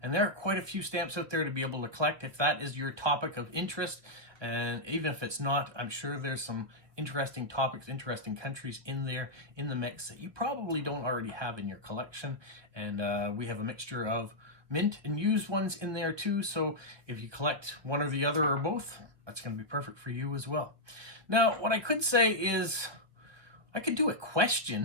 and there are quite a few stamps out there to be able to collect if that is your topic of interest. And even if it's not, I'm sure there's some interesting topics, interesting countries in there in the mix that you probably don't already have in your collection. And we have a mixture of mint and used ones in there too, so if you collect one or the other or both, that's going to be perfect for you as well. Now, what I could say is I could do a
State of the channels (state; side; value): late; left; 1.2 ms